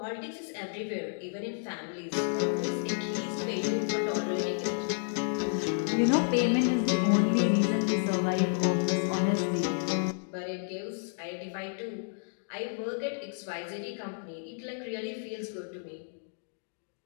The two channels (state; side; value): silent; right; digital silence